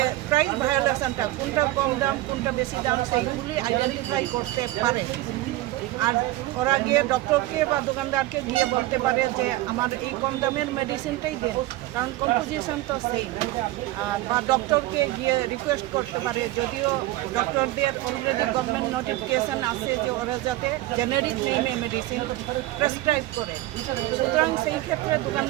প্রাইস ভায়োলেশনটা কোনটা কম দাম কোনটা বেশি দাম সেইগুলি আইডেন্টিফাই করতে পারে। আর ওরা গিয়ে ডক্টরকে বা দোকানদারকে গিয়ে বলতে পারে যে আমার এই কম দামের মেডিসিনটাই দেন, কারণ কম্পোজিশন তো সেম। বা ডক্টরকে গিয়ে রিকোয়েস্ট করতে পারে, যদিও ডক্টরদের অলরেডি গভর্নমেন্ট নোটিফিকেশান আছে যে ওরা যাতে জেনারিক নেমে মেডিসিন প্রেসক্রাইব করে। সুতরাং সেই ক্ষেত্রে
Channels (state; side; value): quieter; left; 17.2 dB